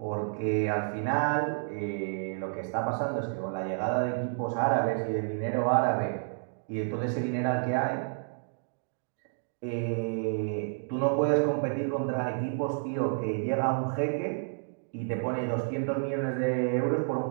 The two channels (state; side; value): silent; left; digital silence